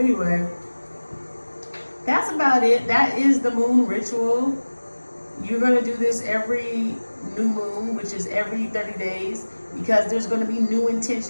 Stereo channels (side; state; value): both; inverted; correlation -1.00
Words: that's about it. That is the moon ritual. You're going to do this every new moon, which is every 30 days, because there's going to be new